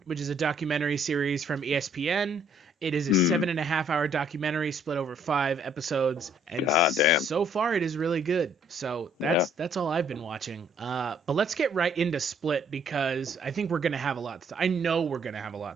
documentary series from ESPN. It is a 7.5-hour documentary split over 5 episodes, and so far it is really good. So that's all I've been watching. But let's get right into Split because I think we're gonna have a lot. I know we're gonna have a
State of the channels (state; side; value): normal; both; correlation 0.63